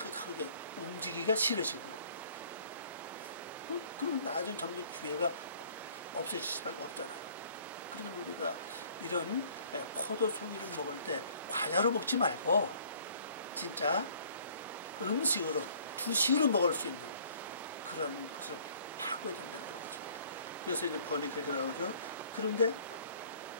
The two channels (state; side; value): inverted; both; correlation -0.56